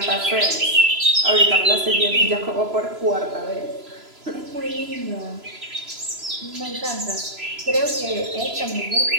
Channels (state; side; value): late; left; 3.0 ms